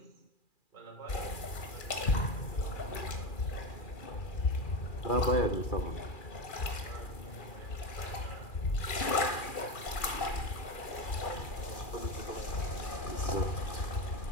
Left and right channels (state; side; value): late; right; 2.4 ms